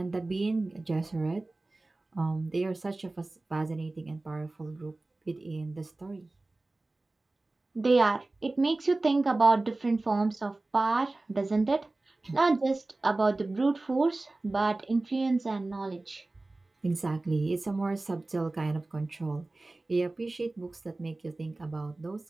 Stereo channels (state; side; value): quieter; left; 3.0 dB